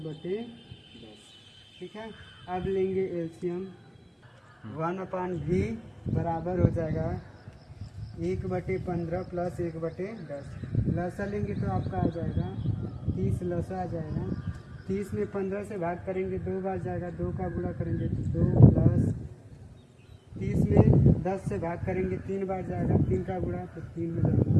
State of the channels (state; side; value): identical; both; correlation 1.00